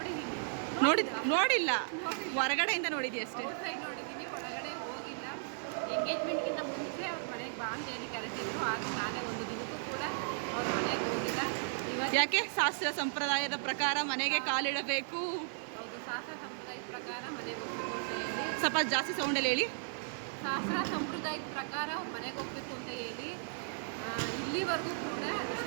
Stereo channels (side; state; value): left; silent; 54 dB below the other